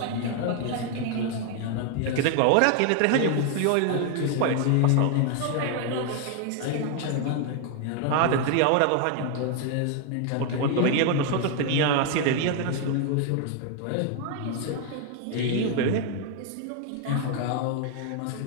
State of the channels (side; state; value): both; different; correlation 0.01